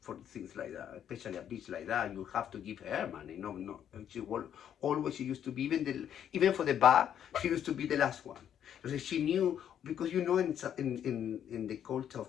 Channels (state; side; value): quieter; right; 9.5 dB